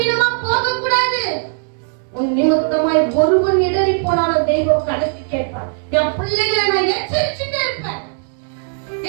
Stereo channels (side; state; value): left; silent; digital silence